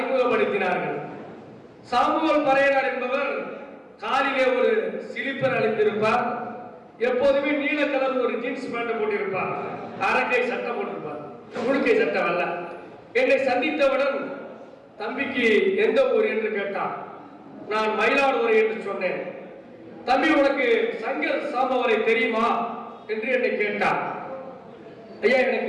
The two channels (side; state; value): both; identical; correlation 1.00